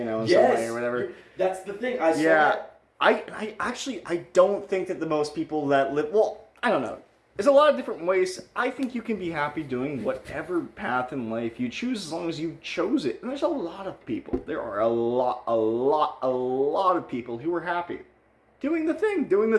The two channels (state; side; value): identical; both; correlation 1.00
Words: some way or whatever. That's the thing. I saw that. I don't think that the most people that live, I don't know. There's a lot of different ways. I think you can be happy doing whatever path in life you choose, as long as you chose it. And there's a lot of people. There are a lot of people who are happy doing the thing